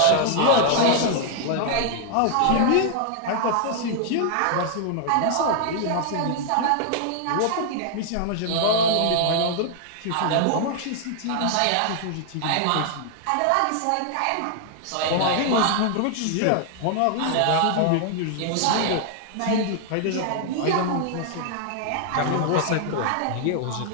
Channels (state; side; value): different; both; correlation 0.00